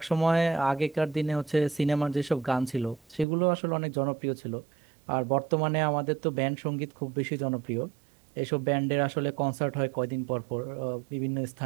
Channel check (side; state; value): left; drops out; at 3.2 s